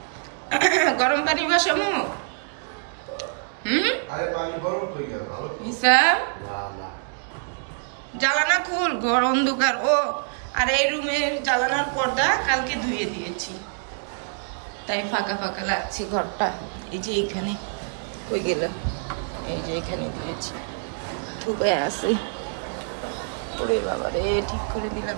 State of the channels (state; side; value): silent; left; digital silence